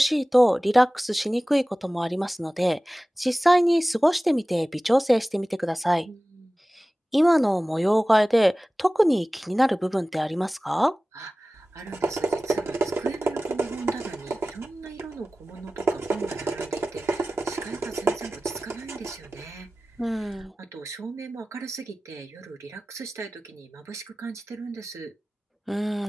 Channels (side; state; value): both; normal; correlation 0.97